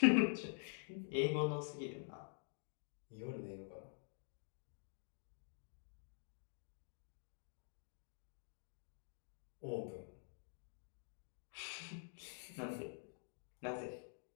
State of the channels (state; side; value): silent; right; digital silence